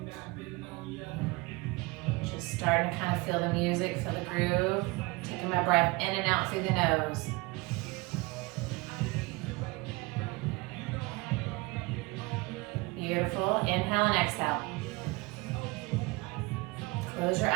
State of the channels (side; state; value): left; quieter; 24.5 dB